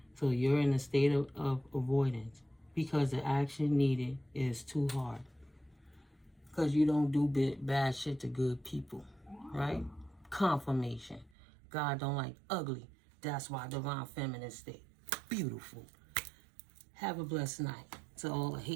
So you're in a state of avoidance because the action needed is too hard. Because you don't do bad shit to good people, right? Confirmation. God don't like ugly. That's why divine feminine state. Beautiful. Have a blessed night. To all the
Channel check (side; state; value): left; drops out; at 11.3 s